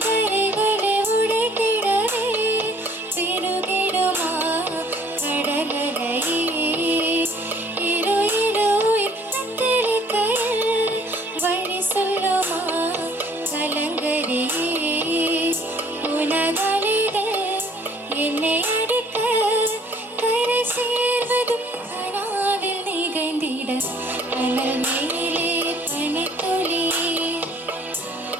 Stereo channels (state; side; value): normal; both; correlation 0.57